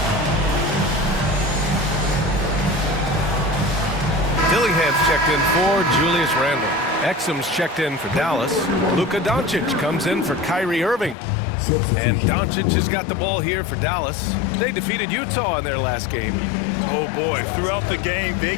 Dillingham's checked in for Julius Randle. Exum's checked in for Dallas. Luka Doncic comes in for Kyrie Irving. And Doncic has got the ball here for Dallas. They defeated Utah in their last game. Oh boy, throughout the game, they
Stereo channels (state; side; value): drops out; right; at 11.2 s